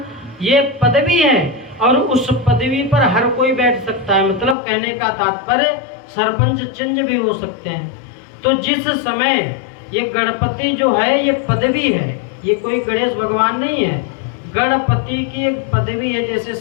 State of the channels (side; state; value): right; drops out; at 4.5 s